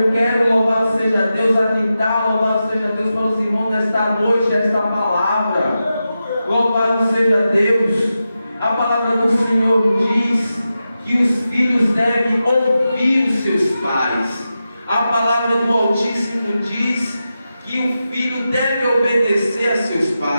quero, louvado seja Deus, atentar, louvado seja Deus para os irmãos desta noite, esta palavra. Louvado seja Deus. A palavra do Senhor diz que os filhos devem ouvir os seus pais. A palavra do Altíssimo diz que o filho deve obedecer a seus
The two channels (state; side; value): inverted; both; correlation -0.91